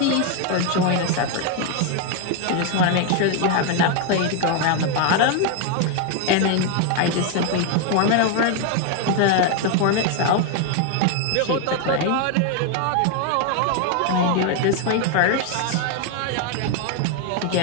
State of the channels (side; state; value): both; different; correlation 0.01